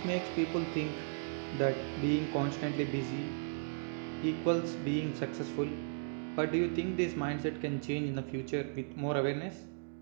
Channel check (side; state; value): left; silent; digital silence